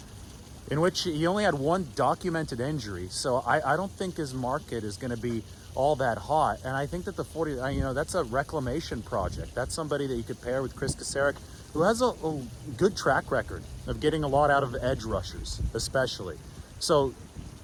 in which he only had one documented injury. So I don't think his market is going to be all that hot. And I think that the 40, that's a reclamation project. That's somebody that you could pair with Chris Kasarik, who has a good track record of getting a lot out of edge rushers, especially. So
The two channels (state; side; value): identical; both; correlation 1.00